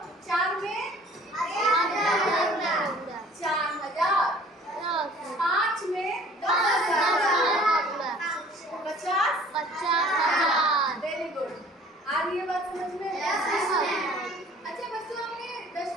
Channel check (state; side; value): normal; both; correlation 0.51